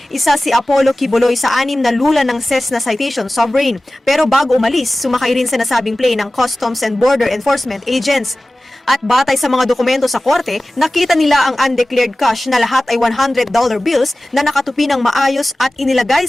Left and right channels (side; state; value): both; normal; correlation 0.97